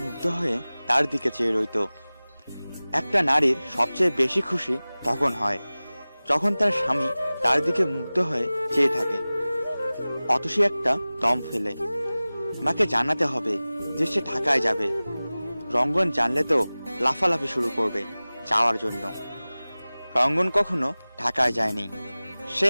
মুগ্ধ হয়ে তার দিকে চেয়ে রইত। একটা নারীর সবচেয়ে বেশি খুশি তখন হয় যখন তার স্বামী তার দিকে মুগ্ধ হয়ে চেয়ে থাকে। অতসী একটা দম ফেলে মাকে জানাতে হবে যে সে ঢাকায় যাবে। রঙ্গন জানলে তো লাফালাফি শুরু করবে যাওয়ার জন্য। রঙ্গন কখনো ঢাকায় যায়নি। সে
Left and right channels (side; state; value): both; inverted; correlation -0.98